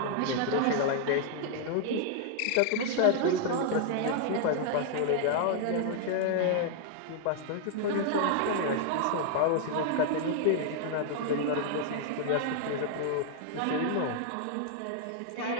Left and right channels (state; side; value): different; both; correlation 0.00